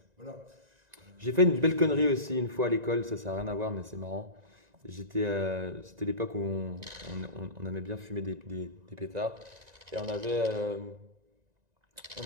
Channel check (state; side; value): late; left; 1.9 ms